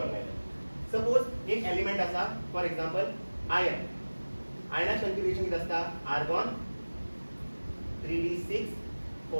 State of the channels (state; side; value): inverted; both; correlation -1.00